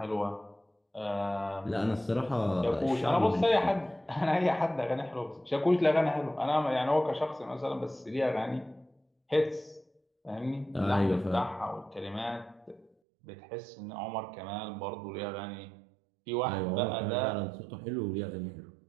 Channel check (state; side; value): drops out; left; at 12.9 s